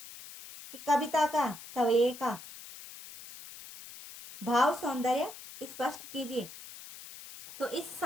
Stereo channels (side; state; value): left; noise; hiss, 15 dB below the sound